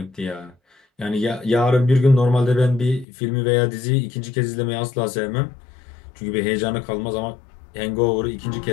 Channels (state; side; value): drops out; right; at 3.1 s